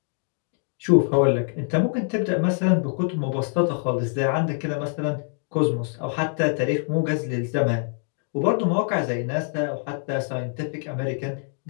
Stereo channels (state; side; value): silent; right; 56 dB below the other